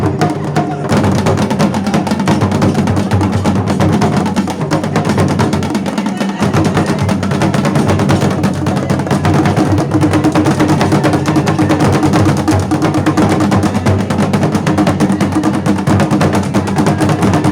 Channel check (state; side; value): identical; both; correlation 1.00